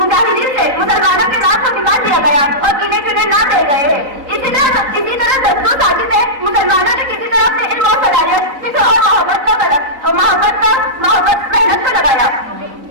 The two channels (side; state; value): left; late; 4.0 ms